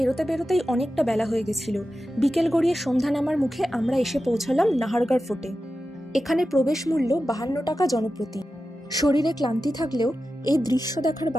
বেরোতেই অনেকটা বেলা হয়ে গেছিল। বিকেল গড়িয়ে সন্ধ্যা নামার মুখে আমরা এসে পৌঁছালাম নাহারগড় ফোর্টে। এখানে প্রবেশ মূল্য 52 টাকা জনপ্রতি। শরীরে ক্লান্তি থাকলেও এই দৃশ্য দেখার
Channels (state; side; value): normal; both; correlation 0.92